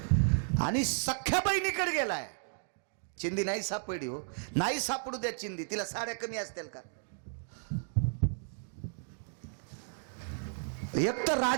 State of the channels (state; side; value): silent; left; digital silence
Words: आणि सख्या बहिणीकडे गेलाय. चिंदी नाही सापडली हो, नाही सापडू द्या चिंदी, तिला साड्या कमी असतील का. एक तर